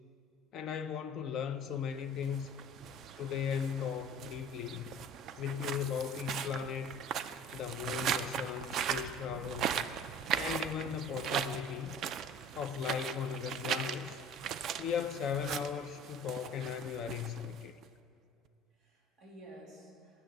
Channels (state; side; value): normal; both; correlation 0.45